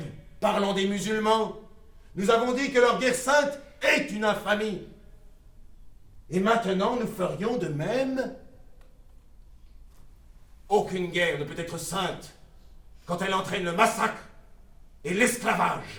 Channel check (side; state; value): both; identical; correlation 1.00